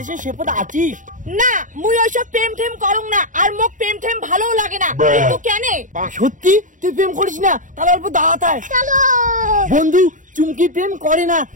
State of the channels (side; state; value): left; late; 0.37 ms